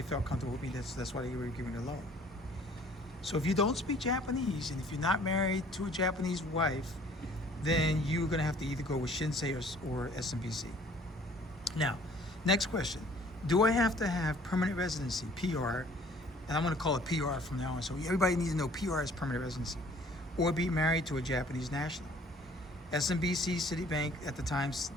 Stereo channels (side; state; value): both; normal; correlation 0.55